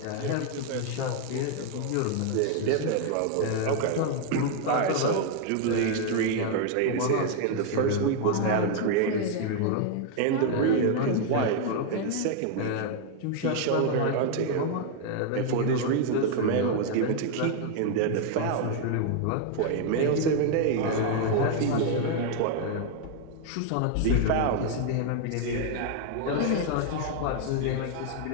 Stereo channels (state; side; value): different; both; correlation 0.00